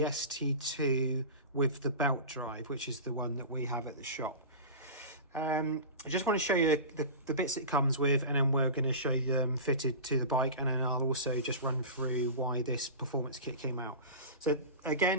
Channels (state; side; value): inverted; both; correlation -0.30